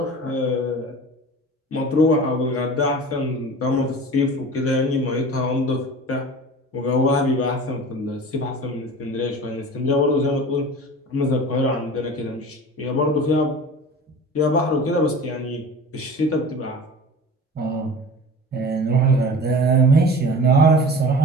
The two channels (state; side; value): normal; both; correlation 0.37